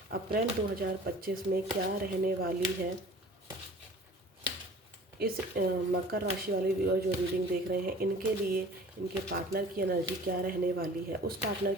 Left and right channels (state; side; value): normal; both; correlation 0.46